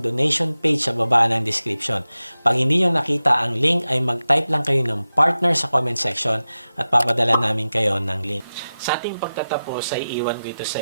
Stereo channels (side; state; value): both; inverted; correlation -0.94